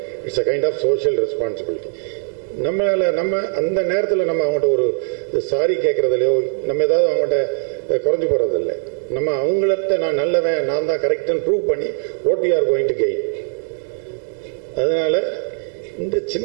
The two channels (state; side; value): silent; left; digital silence